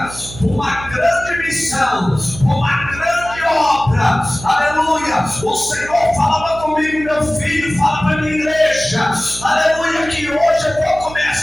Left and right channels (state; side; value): noise; right; hum, 14 dB below the sound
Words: uma grande missão, uma grande obra, aleluia. O Senhor falava comigo, meu filho, fala para a minha igreja, aleluia, que hoje eu vou